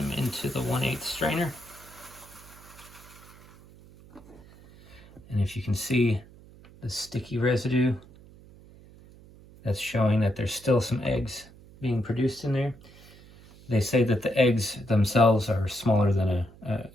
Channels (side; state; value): right; noise; hum, 22 dB below the sound